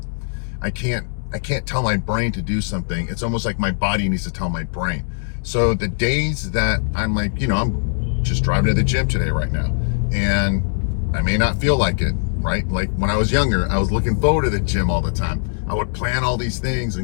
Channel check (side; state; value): right; silent; 65 dB below the other